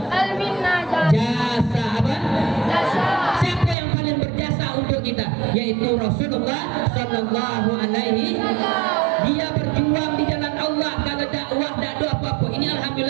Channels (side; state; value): left; drops out; at 3.8 s